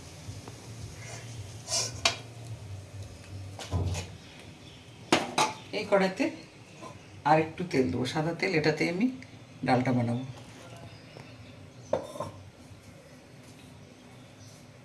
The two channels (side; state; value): both; identical; correlation 1.00